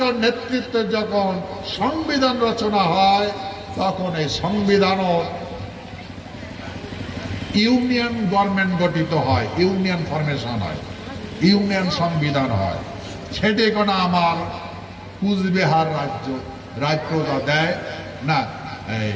নেতৃত্বে যখন সংবিধান রচনা হয়, তখন এই সংবিধান ইউনিয়ন গভর্নমেন্ট গঠিত হয়, ইউনিয়ন ফরমেশন হয়, ইউনিয়ন সংবিধান হয়। সেটি কোনো আমার কুচবিহার রাজ্যটা দেয় না,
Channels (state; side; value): identical; both; correlation 1.00